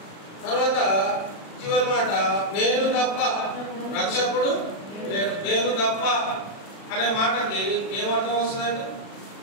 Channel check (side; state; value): right; late; 36 ms